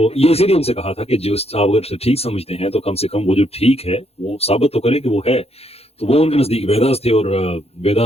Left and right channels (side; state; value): right; late; 0.29 ms